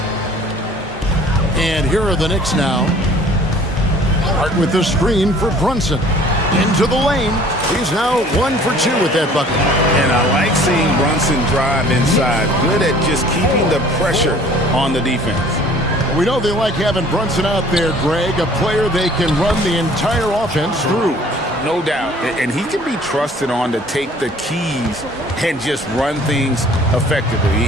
And here are the Knicks now. Hart with the screen for Brunson. Into the lane. He's now 1 for 2 with that bucket. And I like seeing Brunson drive inside. Good at just keeping the pressure on the defense. We know they like having Brunson out there, Greg, a player they can run the entire offense through. No doubt. And he can be trusted on to take the keys and just run things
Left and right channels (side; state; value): both; normal; correlation 0.52